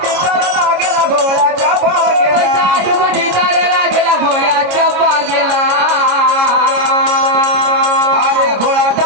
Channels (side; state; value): left; late; 26 ms